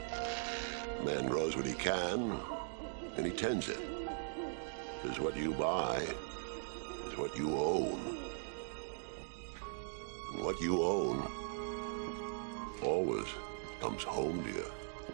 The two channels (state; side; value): silent; left; digital silence